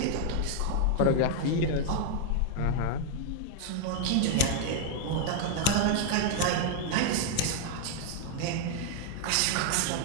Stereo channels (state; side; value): different; both; correlation 0.00